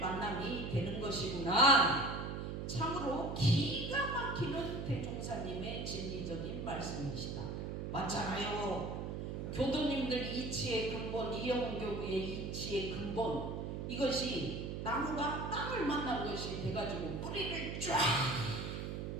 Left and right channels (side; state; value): right; noise; hum, 4 dB below the sound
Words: 되는 것이구나. 참으로 기가 막히는 대종사님의 진리적인 말씀이시다. 맞잖아요. 교도님들 이치의 근본, 이영은 교무의 이치의 근본, 이것이 나무가 땅을 만난 것이 돼가지고 뿌리를 쫙